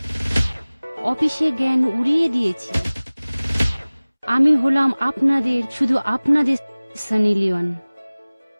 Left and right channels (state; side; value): inverted; both; correlation -1.00